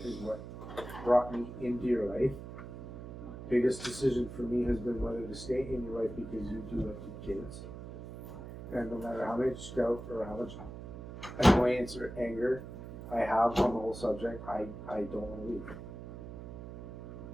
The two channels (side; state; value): right; noise; hum, 11 dB below the sound